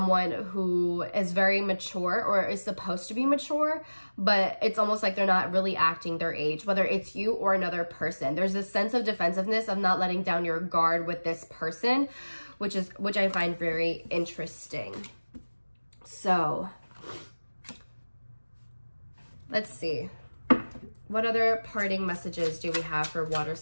who is very mature or is supposed to be mature, but it's almost like they're not really acting their age, whether it's you or another person. There's this sense of defensiveness of not letting down your guard with this person, which I find very interesting. So let's see. What other parting messages do we have for water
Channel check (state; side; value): inverted; both; correlation -1.00